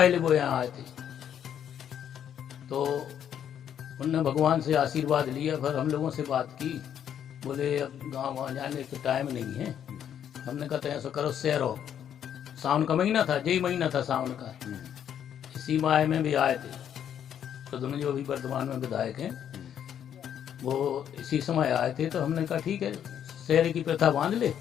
वो यहाँ आए थे, तो उनने भगवान से आशीर्वाद लिया। फिर हम लोगों से बात की, बोले अब गाँव वहाँ जाने का टाइम नहीं है। हमने कहा ऐसा करो, सैरो, सावन का महीना था, यही महीना था सावन का, इसी माह में भी आए थे प्रद्युम्न जो अभी वर्तमान में विधायक हैं, वो इसी समय आए थे। तो हमने कहा ठीक है, शहर की प्रथा बांध ले,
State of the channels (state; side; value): quieter; right; 9.4 dB